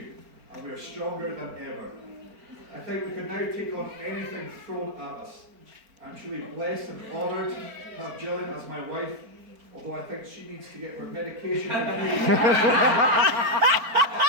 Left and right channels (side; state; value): left; late; 4.3 ms